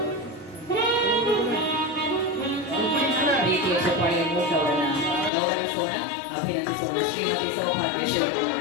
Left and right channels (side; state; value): right; drops out; at 5.3 s